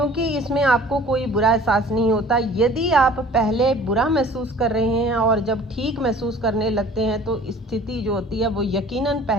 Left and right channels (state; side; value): normal; both; correlation 0.48